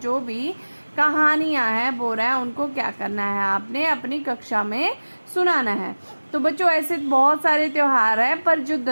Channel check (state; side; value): inverted; both; correlation -1.00